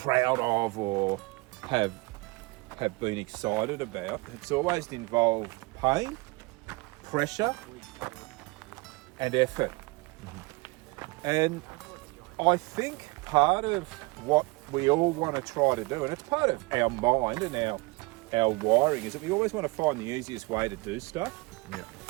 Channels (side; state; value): left; quieter; 25.2 dB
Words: of or have been excited about, it's always involved pain, pressure, and effort. And I think part of what we all want to try to do, and it's part of our mind and our wiring, is that we always want to find the easiest way to do stuff. Yeah.